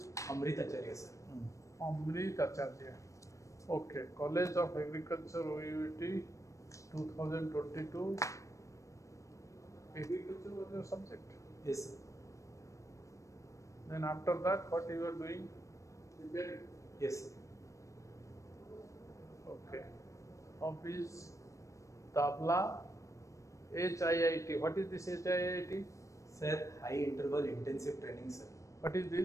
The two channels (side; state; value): right; late; 0.15 ms